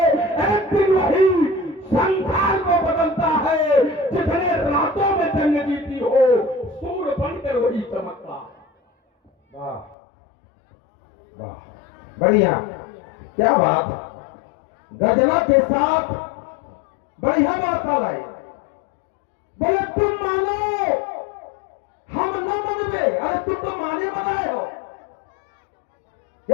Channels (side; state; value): right; drops out; at 10.0 s